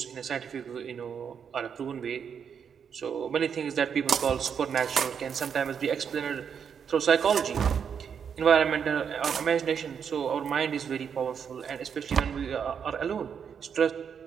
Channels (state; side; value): quieter; left; 7.3 dB